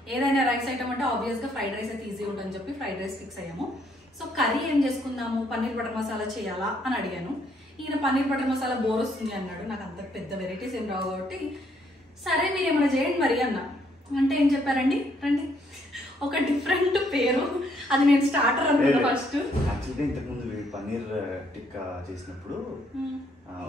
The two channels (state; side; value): normal; both; correlation 0.69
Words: ఏదైనా రైస్ ఐటమ్ అంటే ఆబ్వియస్గా ఫ్రైడ్ రైస్ అయితే ఈజీ ఉంటుందని చెప్పి ఫ్రైడ్ రైస్ ఫిక్స్ అయ్యాము. సో కర్రీ ఏం చేసుకుందాము, పన్నీర్ బటర్ మసాలా చేయాలా అని అడిగాను. ఈయన పన్నీర్ బటర్ మసాలా బోర్ వస్తుంది అన్నాడు. నాకు అంత పెద్ద వెరైటీస్ ఏం రావు కాబట్టి సరే మీరు ఏమైనా చేయండి మరి అన్న. అంటే ఏం చెప్పారండి, రండి ఒక డిఫరెంట్ పేరు. అది నేను స్టార్టర్ అనుకున్నా ఫస్ట్. యాక్చువల్గా ఇంతకుముందు పన్నీర్ టిక్కా చేసినప్పుడు